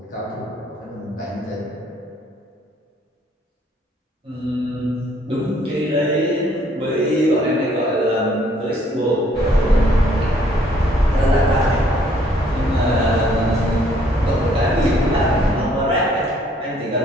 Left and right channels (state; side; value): normal; both; correlation 0.64